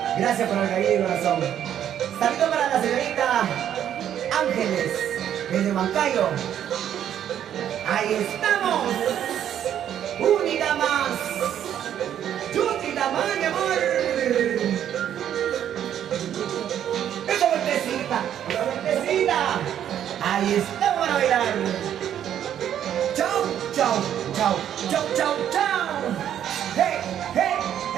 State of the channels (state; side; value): quieter; left; 10.1 dB